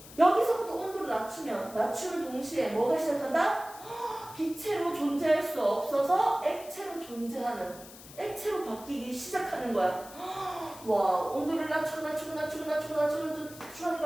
여기서부터 온도를 낮추는 동시에 뭐가 시작한다? 기체로 존재할 수 없어서 액체로 존재하는, 액체로 바뀌기 시작하는 거야. 와, 온도를 낮추니까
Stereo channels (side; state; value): left; noise; hiss, 18 dB below the sound